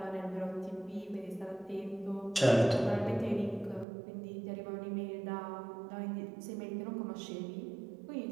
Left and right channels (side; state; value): left; drops out; at 3.9 s